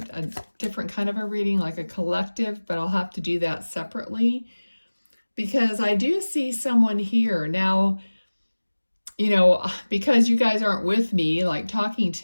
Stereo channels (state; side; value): inverted; both; correlation -1.00